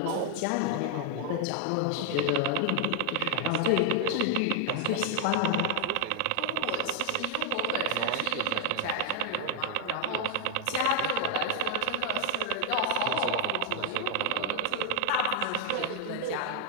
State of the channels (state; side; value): different; both; correlation 0.00